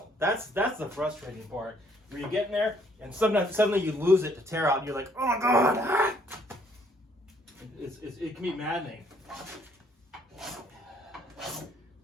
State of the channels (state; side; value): normal; both; correlation 0.65